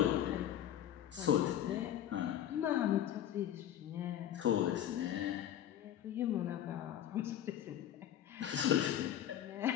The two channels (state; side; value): quieter; right; 11.1 dB